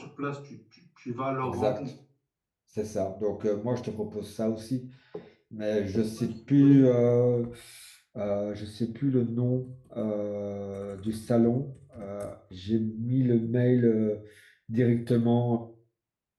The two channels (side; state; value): both; identical; correlation 1.00